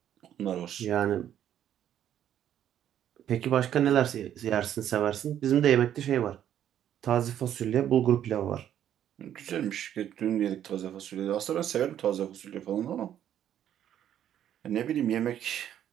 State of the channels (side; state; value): left; quieter; 10.5 dB